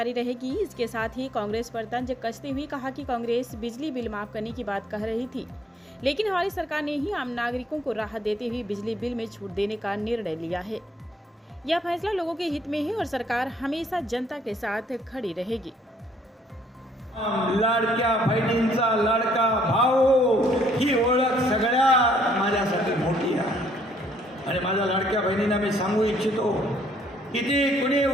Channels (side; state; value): both; normal; correlation 0.66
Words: रहेगी। इसके साथ ही कांग्रेस पर तंज कसते हुए कहा कि कांग्रेस बिजली बिल माफ करने की बात कह रही थी, लेकिन हमारी सरकार ने ही आम नागरिकों को राहत देते हुए बिजली बिल में छूट देने का निर्णय लिया है। यह फैसला लोगों के हित में है और सरकार हमेशा जनता के साथ खड़ी रहेगी। लाडक्या बहिणींचा लाडका भाऊ ही ओळख सगळ्या माझ्यासाठी मोठी आहे आणि माझ्या लाडक्या बहिणींना मी सांगू इच्छितो, किती कुणी